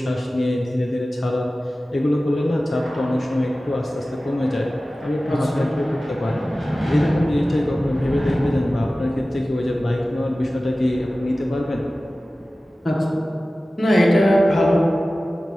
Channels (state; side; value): normal; both; correlation 0.96